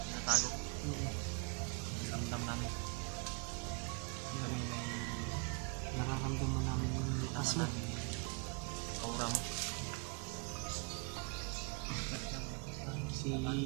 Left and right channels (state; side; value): quieter; left; 32.8 dB